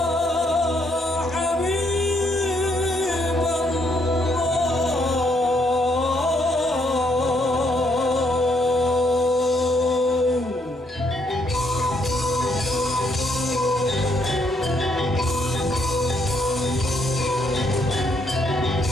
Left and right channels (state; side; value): normal; both; correlation 0.72